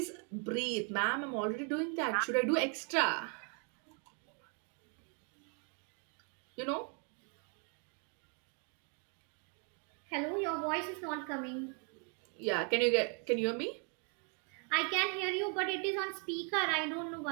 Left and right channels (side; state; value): left; quieter; 38.9 dB